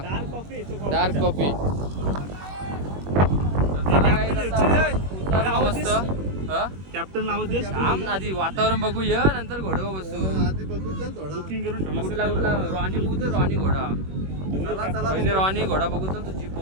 डार्क कॉफी. उतरला मस्त. कॅप्टन नाव थांब आधी वातावरण बघूया नंतर घोड्यावर बसू. आधी बघू चल थोडा. बुकिंग करून कुठला रॉनी बघू तर रॉनी घोडा. पहिले रॉनी घोडा बघू चल तू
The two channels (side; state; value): left; late; 21 ms